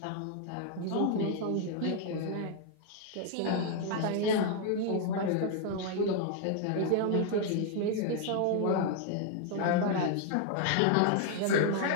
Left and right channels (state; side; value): different; both; correlation 0.00